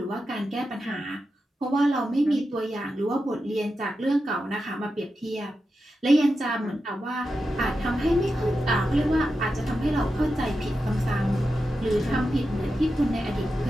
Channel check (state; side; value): normal; both; correlation 0.90